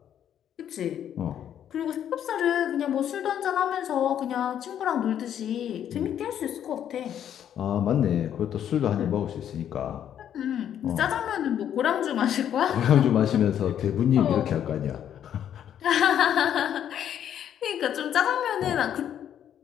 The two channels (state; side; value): quieter; right; 9.8 dB